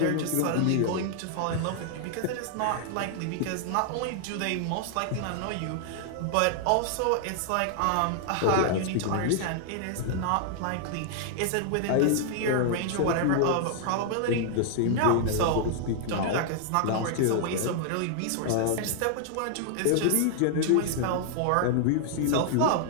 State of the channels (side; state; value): both; different; correlation 0.00